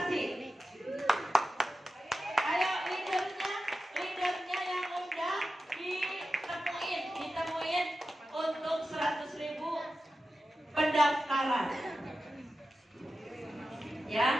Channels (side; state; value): both; normal; correlation 0.92